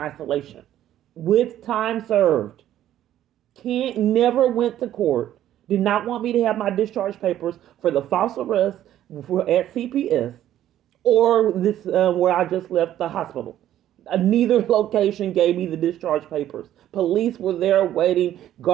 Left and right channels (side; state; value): left; quieter; 12.1 dB